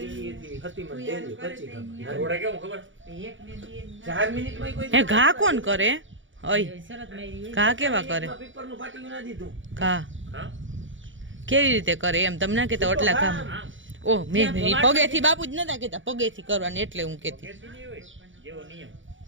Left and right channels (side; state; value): left; late; 0.56 ms